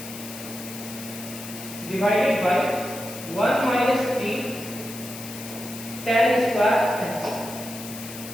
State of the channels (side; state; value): left; noise; hiss, 12 dB below the sound